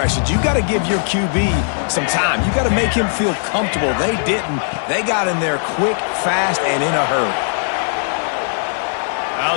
You got to give your QB some time. You got to make him feel comfortable. They didn't. They got in there quick, fast, and in a hurry.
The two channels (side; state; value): right; silent; digital silence